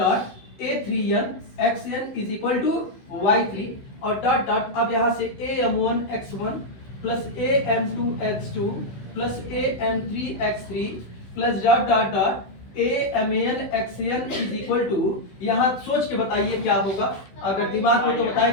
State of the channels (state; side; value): late; right; 16 ms